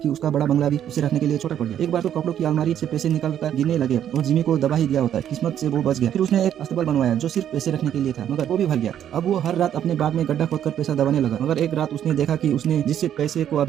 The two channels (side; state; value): left; quieter; 10.2 dB